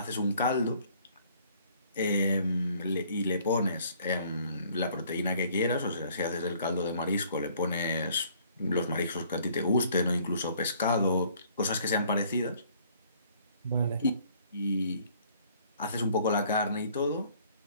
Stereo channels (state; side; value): inverted; both; correlation -0.59